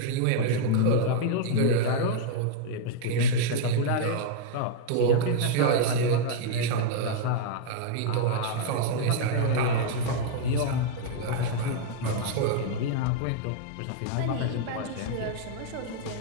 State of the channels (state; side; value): different; both; correlation -0.01